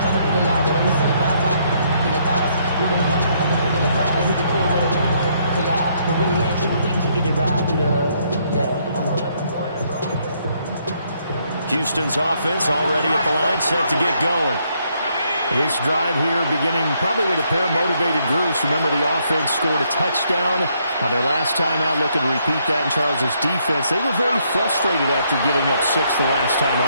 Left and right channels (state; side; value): inverted; both; correlation -0.72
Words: Houston's offense already at the line, set to get going. This drive here beginning probably with a pair of motivated groups. Remember, the offense scored a touchdown on their last time out, looking to repeat that in Charles's defense. They were very frustrated after giving up 6 the last time